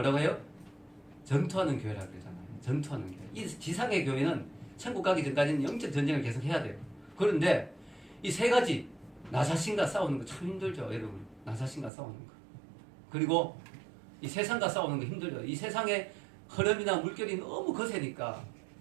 해요? 전투하는 교회라고 그러잖아요. 전투하는 교회. 이 지상의 교회는 천국 가기 전까지는 영적 전쟁을 계속 해야 돼요. 그런데 이 세 가지, 나 자신과 싸우는 거 참 힘들죠, 여러분. 나 자신과 싸우는 거. 그리고 이 세상과 싸우는 거 힘들죠. 이 세상의 흐름이나 물결이 너무 거세니까,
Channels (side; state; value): left; drops out; at 11.9 s